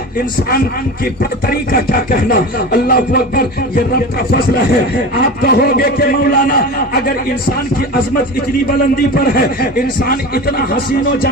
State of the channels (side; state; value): both; normal; correlation 0.29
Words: انسان کی برتری کا کیا کہنا۔ اللہ اکبر، یہ رب کا فضل ہے۔ آپ کہو گے کہ مولانا اگر انسان کی عظمت اتنی بلندی پر ہے، انسان اتنا حسین و